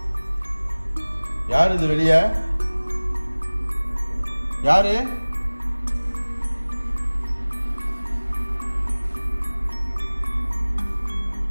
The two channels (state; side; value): inverted; both; correlation -1.00